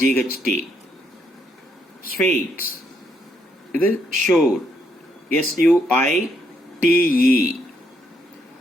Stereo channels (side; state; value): both; normal; correlation 0.74